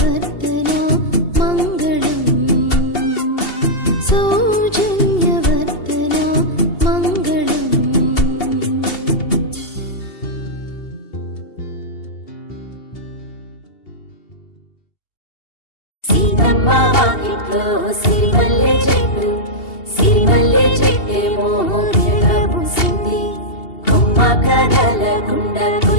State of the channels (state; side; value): late; right; 2.7 ms